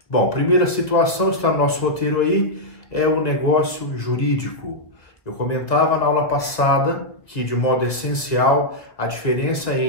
Bom, primeira situação, está no nosso roteiro aí, é o negócio jurídico. Eu comentava na aula passada que, de modo essencial, a diferença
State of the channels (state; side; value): late; right; 1.9 ms